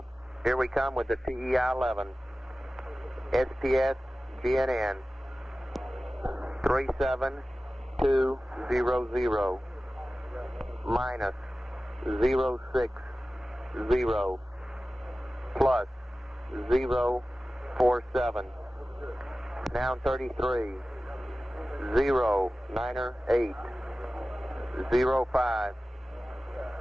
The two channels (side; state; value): both; normal; correlation 0.96